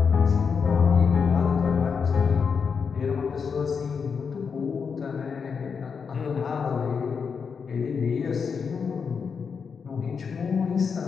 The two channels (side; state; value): right; quieter; 5.9 dB